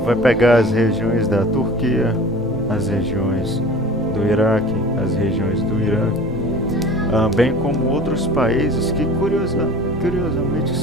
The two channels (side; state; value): both; normal; correlation 0.42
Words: vai pegar as regiões da Turquia, as regiões do Iraque, as regiões do Irã, bem como outros países que curiosamente